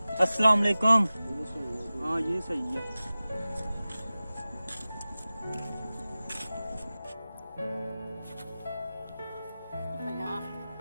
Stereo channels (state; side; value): inverted; both; correlation -0.96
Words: अस्सलाम वालेकुम। हाँ ये सही है।